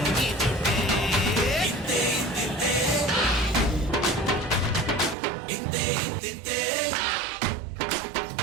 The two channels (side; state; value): left; drops out; at 5.2 s